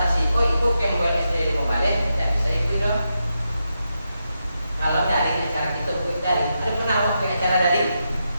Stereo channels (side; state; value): both; inverted; correlation -0.86